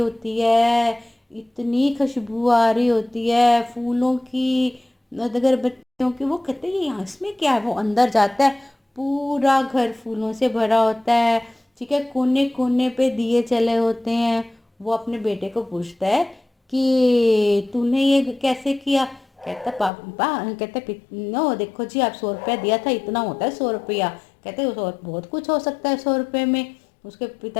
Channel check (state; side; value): drops out; right; at 19.9 s